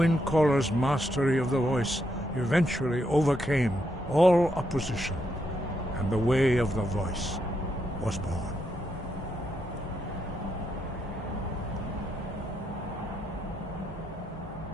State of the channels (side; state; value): both; normal; correlation 0.80